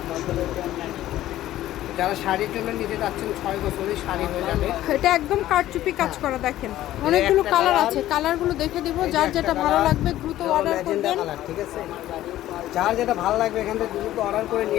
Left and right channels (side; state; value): right; quieter; 14.0 dB